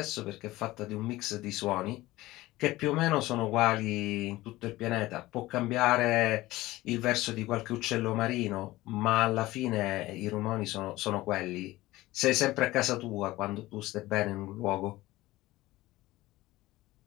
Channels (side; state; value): right; quieter; 18.0 dB